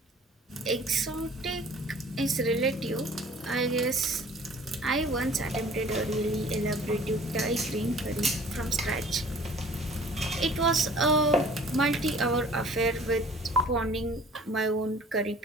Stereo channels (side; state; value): both; normal; correlation 0.50